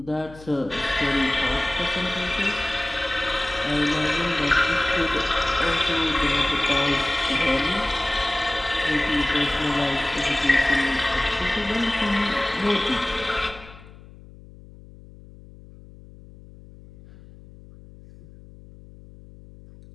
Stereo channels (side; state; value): left; noise; hum, 20 dB below the sound